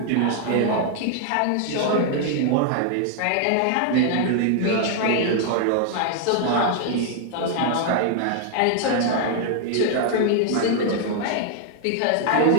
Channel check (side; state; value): both; different; correlation 0.00